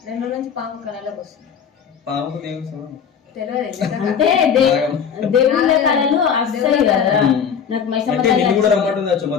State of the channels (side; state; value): right; quieter; 7.3 dB